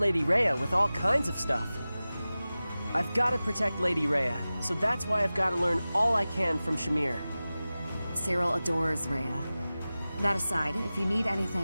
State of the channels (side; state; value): both; inverted; correlation -0.96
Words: Rhea with all kinds of stuff. I've got to protect Lady Rhea, so that's why I've got to learn all I can from Shamir. Cyril adores Rhea. That aside, if you need